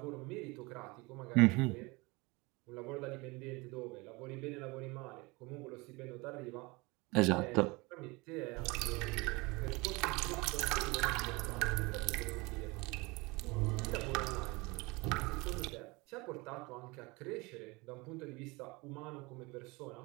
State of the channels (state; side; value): quieter; left; 24.9 dB